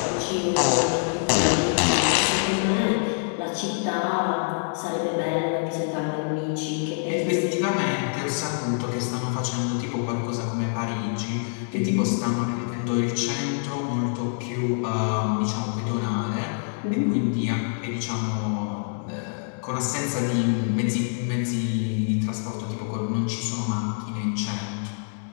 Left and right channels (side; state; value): right; silent; digital silence